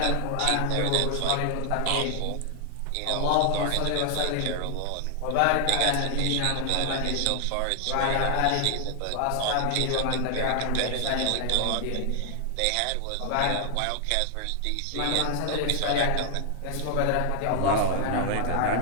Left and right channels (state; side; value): different; both; correlation 0.00